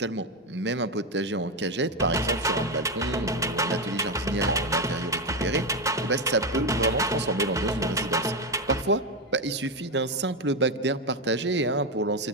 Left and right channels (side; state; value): both; normal; correlation 0.10